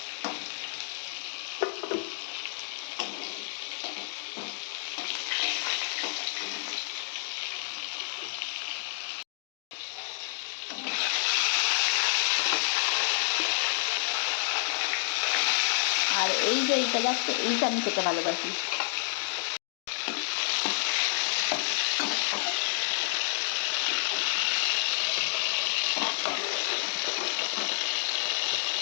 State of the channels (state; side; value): silent; right; digital silence